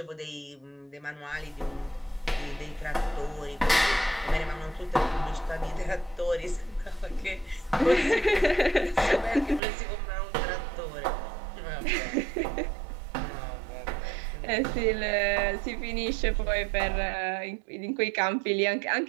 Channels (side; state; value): left; drops out; at 9.6 s